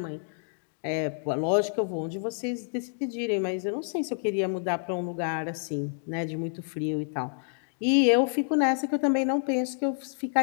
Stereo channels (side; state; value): right; silent; digital silence